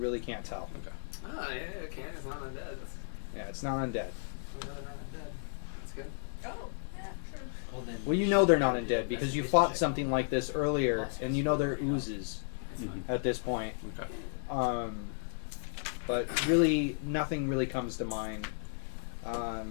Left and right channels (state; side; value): silent; right; digital silence